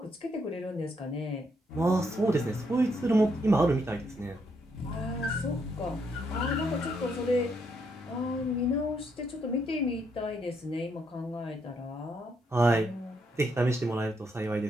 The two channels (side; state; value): both; normal; correlation 0.75